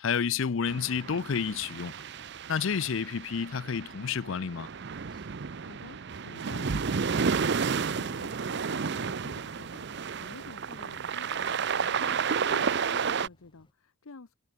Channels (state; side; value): normal; both; correlation 0.07